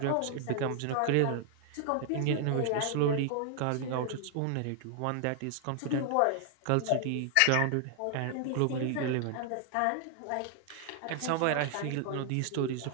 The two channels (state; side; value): different; both; correlation 0.00